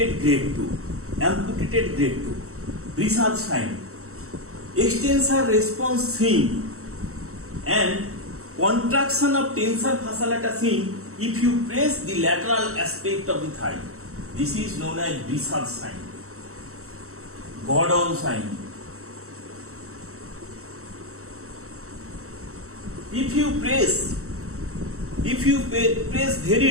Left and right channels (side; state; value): left; late; 0.64 ms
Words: grade 2. Brisard sign, extensor response seen and contraction of tensor fasciculata seen if you press the lateral aspect of the thigh. This is known as Brisard sign. Gordon sign, if you press